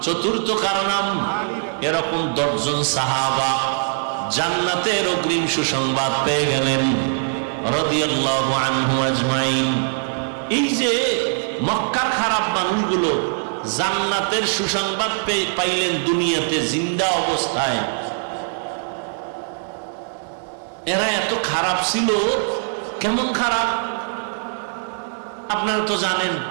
চতুর্থ কার নাম? এরকম 10 জন সাহাবা জান্নাতের অগ্রিম সুসংবাদ পেয়ে গেলেন রাদিয়াল্লাহু আনহু আজমাইন। এই যে মক্কার খারাপ মানুষগুলো জান্নাতের সুসংবাদ পাইলেন দুনিয়াতে জিন্দা অবস্থায়। এরা এত খারাপ ছিল। কেমন খারাপ আপনারা তো জানেন।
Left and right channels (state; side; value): silent; left; 65 dB below the other